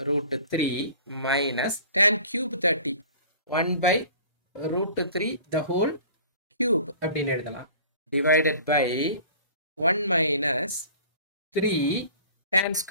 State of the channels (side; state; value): both; inverted; correlation -0.46